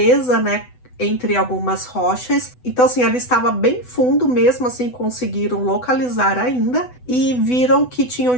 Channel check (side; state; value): right; late; 8.0 ms